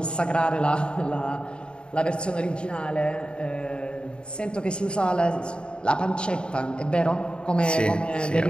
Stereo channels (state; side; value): late; right; 0.052 ms